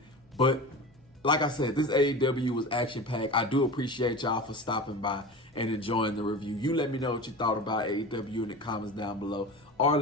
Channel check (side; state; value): both; normal; correlation 0.31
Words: but like I said, this AEW was action-packed. I do appreciate y'all for stopping by and enjoying the review. You let me know what you thought about AEW in the comments down below, or